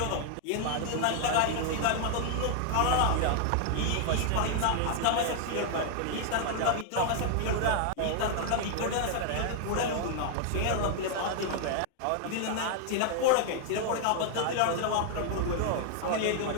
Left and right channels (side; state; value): both; different; correlation 0.00